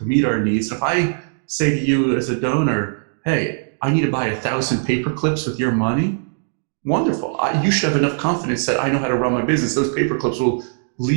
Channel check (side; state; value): left; silent; digital silence